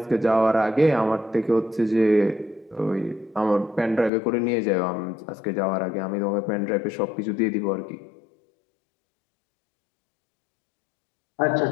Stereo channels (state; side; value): drops out; right; at 4.1 s